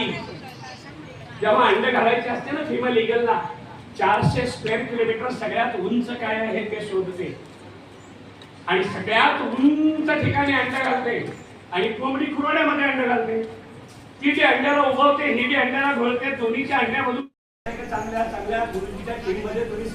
जेव्हा अंड घालायची असते ना, फिमेल ईगलला 400 स्क्वेअर किलोमीटर सगळ्यात उंच काय आहे ते शोधते आणि सगळ्यात उंच ठिकाणी अंड घालते. आणि कोंबडी खुरड्यामध्ये अंड घालते. ती जे अंड्याला उभवते, ही जे अंड्याला घोळते. दोन्हीच्या अंड्यामधून चांगल्या चांगल्या गुरुजीच्या टीममध्ये तुम्ही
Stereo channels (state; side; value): identical; both; correlation 1.00